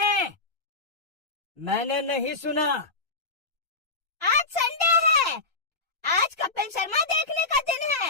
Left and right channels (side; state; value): right; quieter; 3.5 dB